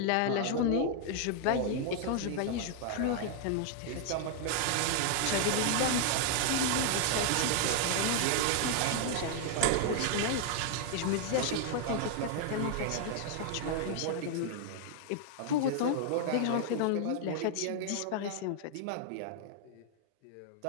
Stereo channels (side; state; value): both; different; correlation 0.00